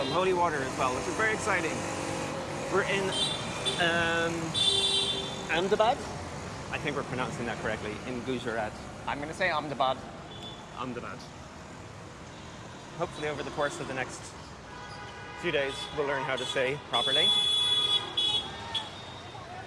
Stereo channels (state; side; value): identical; both; correlation 1.00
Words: holy water as well, which is very exciting. We're in Ahmedabad. I think we're pronouncing that correctly. In Gujarat. I'm going to say Ahmedabad. Ahmedabad. Hopefully over the course of the next few days we'll learn how to say properly.